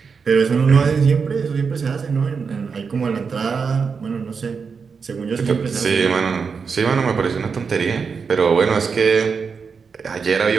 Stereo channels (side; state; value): left; quieter; 5.6 dB